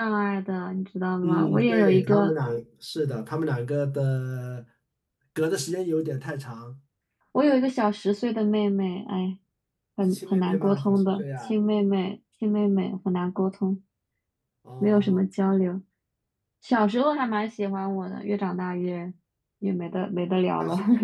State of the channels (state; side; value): identical; both; correlation 1.00